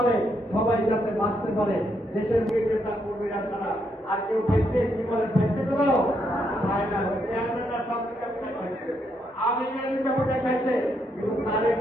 সবাই যাতে বাঁচতে পারে। দেশের নেতা কর্মীরা ছাড়া আর কেউ ব্যক্তি জীবনের ব্যক্তি করেও হয় না।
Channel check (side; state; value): both; normal; correlation 0.77